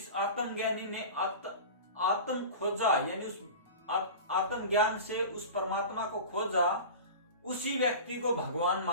आत्मज्ञानी ने आत्म खोजा यानी उस आत्मज्ञान से उस परमात्मा को खोजा, उसी व्यक्ति को भगवान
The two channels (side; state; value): both; inverted; correlation -0.32